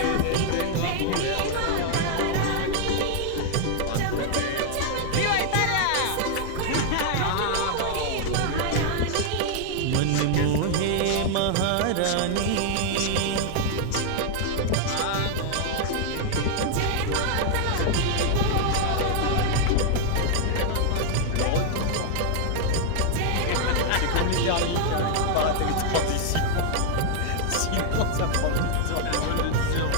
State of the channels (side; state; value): both; different; correlation 0.00